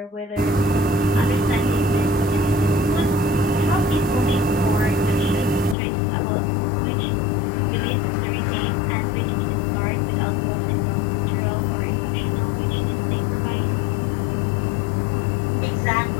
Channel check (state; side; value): drops out; right; at 5.8 s